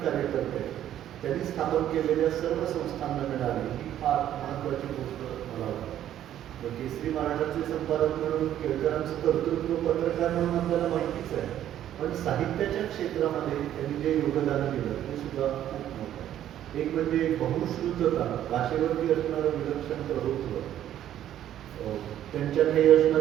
कार्यकर्ते त्यांनी स्थापन केलेल्या सर्व संस्थांना मिळाली ही फार महत्त्वाची गोष्ट मला वाटते. केसरी मराठाचे संपादक म्हणून केळकरांचं कर्तृत्व पत्रकार म्हणून आपल्याला माहितीच आहे, पण साहित्याच्या क्षेत्रामध्ये त्यांनी जे योगदान दिलं ते सुद्धा खूप मोठं आहे. एक म्हणजे बहुश्रुतता, भाषेवरती असणारं विलक्षण प्रभुत्व, त्यांच्याकडे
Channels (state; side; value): quieter; left; 11.5 dB